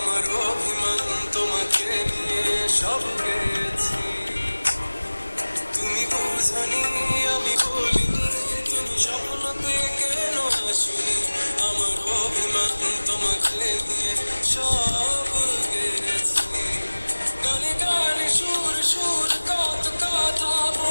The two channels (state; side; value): inverted; both; correlation -1.00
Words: অভিমান তোমাকে নিয়ে সব গেছি। তুমি বুঝনি আমি বলিনি, তুমি স্বপ্নতে কেন আসনি, আমার অভিমান তোমাকে নিয়ে সব গেছি। গানে গানে সুর সুর কত কথা